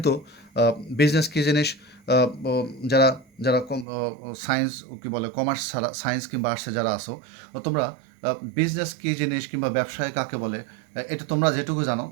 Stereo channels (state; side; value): drops out; left; at 3.9 s